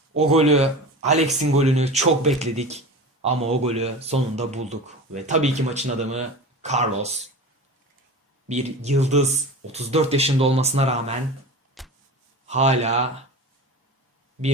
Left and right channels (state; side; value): normal; both; correlation 0.32